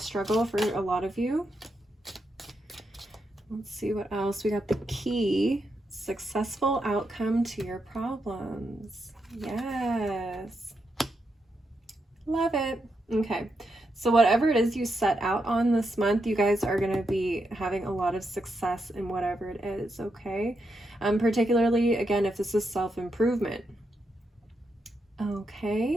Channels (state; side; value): normal; both; correlation 0.83